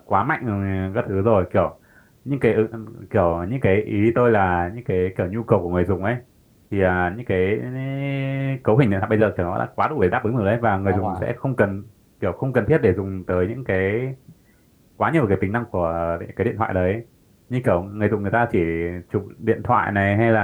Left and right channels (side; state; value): both; identical; correlation 1.00